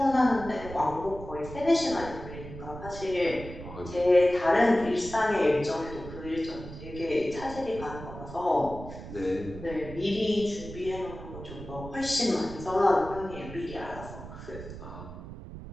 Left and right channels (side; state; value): right; noise; rumble, 12 dB below the sound